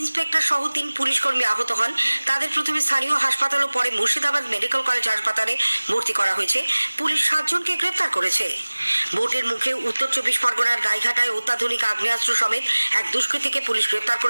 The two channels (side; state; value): both; inverted; correlation -1.00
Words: সহ 3 পুলিশ কর্মী আহত হন। তাদের প্রথমে স্থানীয় হাসপাতাল ও পরে মুর্শিদাবাদ মেডিকেল কলেজ হাসপাতালে ভর্তি করা হয়েছে। পুলিশ 7 জনকে গ্রেপ্তার করেছে। ভোটের মুখে উত্তর 24 পরগনার গাইঘাটায় অত্যাধুনিক আগ্নেয়াস্ত্র সমেত এক দুষ্কৃতীকে পুলিশ গ্রেপ্তার